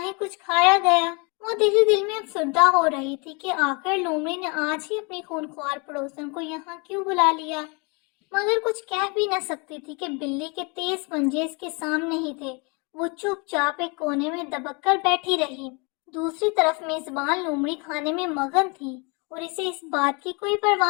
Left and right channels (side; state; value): right; quieter; 31.2 dB